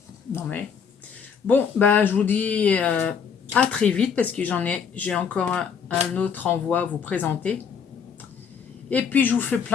Non mais... Bon, bah, je vous dis à très vite parce que j'ai encore un autre envoi à vous présenter. Et puis, je vous fais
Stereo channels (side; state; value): right; quieter; 6.7 dB